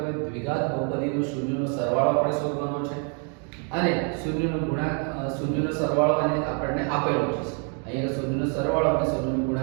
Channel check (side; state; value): left; quieter; 40.0 dB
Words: દ્વિઘાત બહુપદીનો શૂન્યનો સરવાળો આપણે શોધવાનો છે અને શૂન્યનો સરવાળો અને આપણને આપેલો છે. અહીંયા શૂન્યનો સરવાળો અને શૂન્યનો